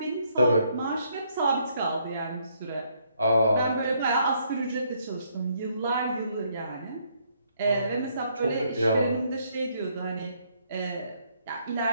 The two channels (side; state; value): both; inverted; correlation -0.71